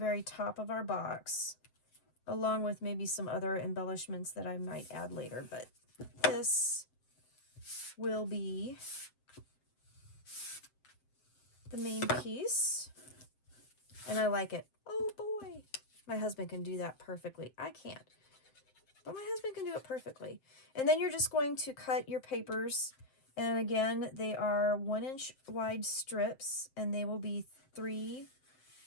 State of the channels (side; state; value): right; late; 7.6 ms